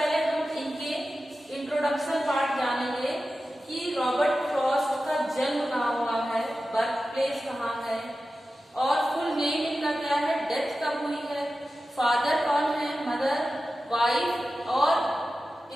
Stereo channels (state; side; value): normal; both; correlation 0.94